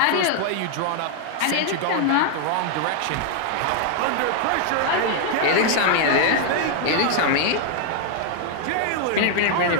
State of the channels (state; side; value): different; both; correlation 0.00